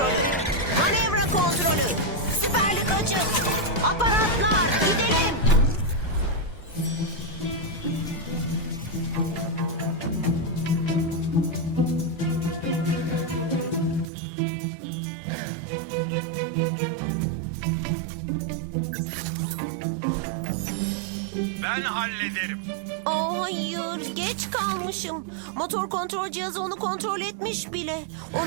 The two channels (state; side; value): drops out; left; at 14.1 s